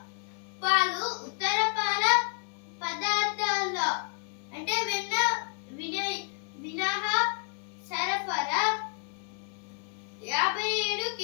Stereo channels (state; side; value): quieter; right; 39.6 dB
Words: పాలు ఉత్తర పాల పదార్థాల్లో అంటే వెన్న మినహా సరఫరా 57